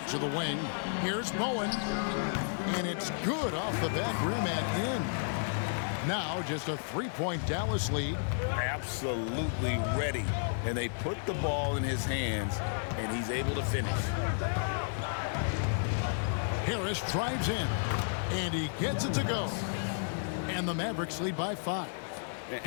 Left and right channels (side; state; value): right; silent; 56 dB below the other